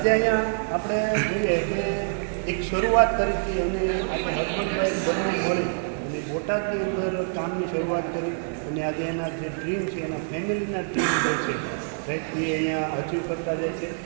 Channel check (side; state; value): left; silent; 61 dB below the other